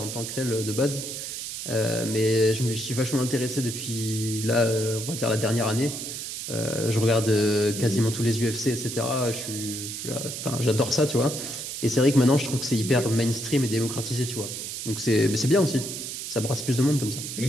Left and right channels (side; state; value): right; noise; hiss, 7 dB below the sound